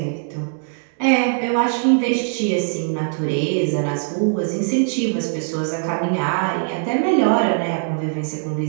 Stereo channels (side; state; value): left; silent; 65 dB below the other